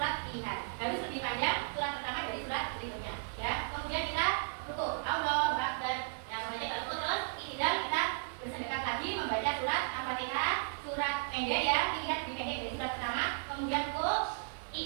pilihan. Harus lebih panjang surat pertama dari surat berikutnya. Ya. Kemudian kita ruku. Allahu Akbar. Nah, membaca ruku terus. Tidak kita bersedekap lagi membaca surat Al-Fatihah, surat pendek ya, pilihan lebih pendek dari surat pertama. Kemudian ruku.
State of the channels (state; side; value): silent; left; 55 dB below the other